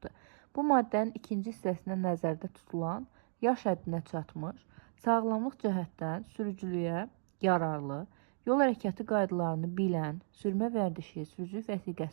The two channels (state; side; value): silent; left; digital silence